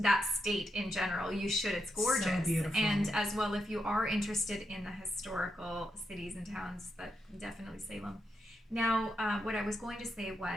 state in general, you should. It's gorgeous. So beautiful. And as well, if you are interested in the historical cities and towns, that definitely Salem. Now, what I was going to say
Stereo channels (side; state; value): both; normal; correlation 0.83